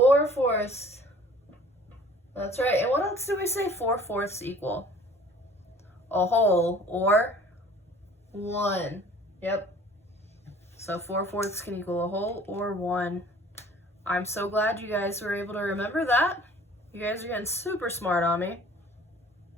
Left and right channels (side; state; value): both; normal; correlation 0.50